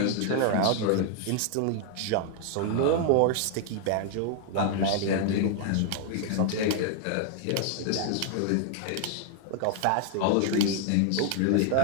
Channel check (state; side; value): different; both; correlation 0.00